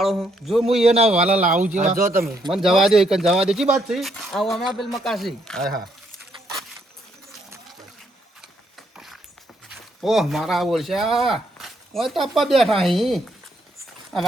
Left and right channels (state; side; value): normal; both; correlation 0.73